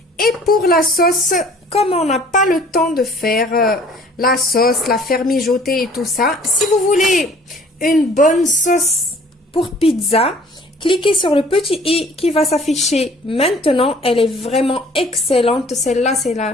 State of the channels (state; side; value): normal; both; correlation 0.53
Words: Et pour la sauce, comme on n'a pas le temps de faire la sauce, la faire mijoter et tout ça, si vous voulez une bonne sauce pour pizza, cliquez sur le petit i qui va s'afficher maintenant. Elle est vraiment excellente. Celle-là,